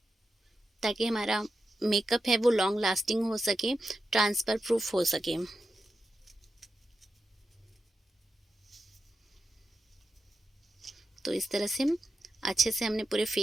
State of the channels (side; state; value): both; normal; correlation 0.89